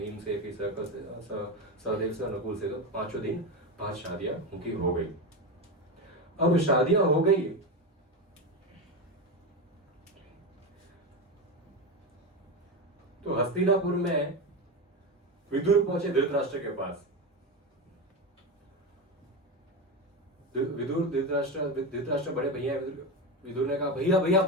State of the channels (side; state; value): both; normal; correlation 0.17